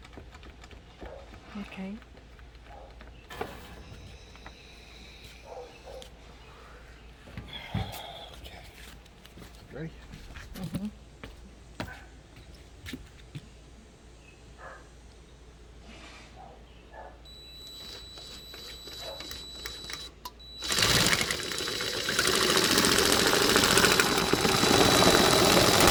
Okay. Okay. Ready? Mm-hmm.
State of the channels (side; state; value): both; identical; correlation 1.00